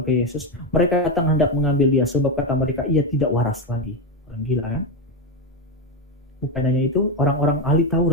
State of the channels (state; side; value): normal; both; correlation 0.11